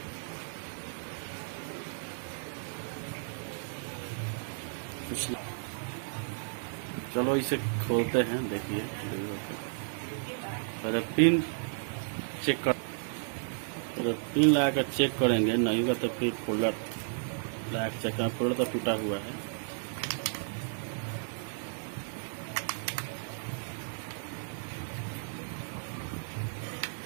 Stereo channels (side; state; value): left; silent; digital silence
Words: कुछ चलो इसे खोलते हैं। देखिए पहले पिन चेक कर, पहले पिन लगा कर चेक करेंगे, नहीं होगा तो फिर फोल्डर लगा कर चेक करें। फोल्डर तो टूटा हुआ है।